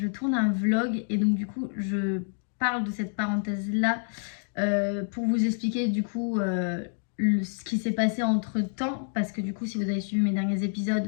tourne un vlog et donc du coup je parle de cette parenthèse là pour vous expliquer du coup ce qui s'est passé entre temps. Parce que du coup si vous avez suivi mes derniers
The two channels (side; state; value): right; silent; 59 dB below the other